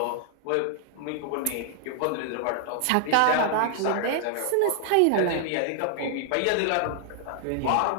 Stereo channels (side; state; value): both; different; correlation 0.00